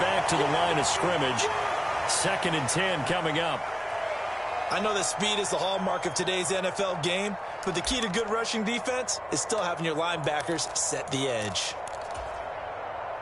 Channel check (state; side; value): identical; both; correlation 1.00